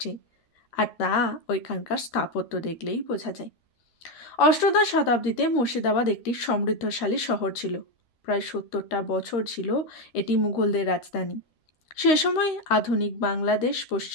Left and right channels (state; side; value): late; right; 13 ms